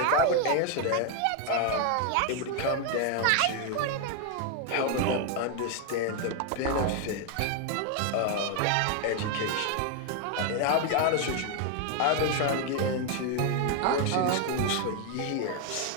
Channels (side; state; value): both; different; correlation 0.01